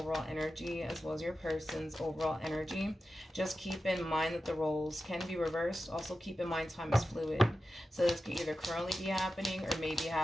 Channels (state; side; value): normal; both; correlation 0.92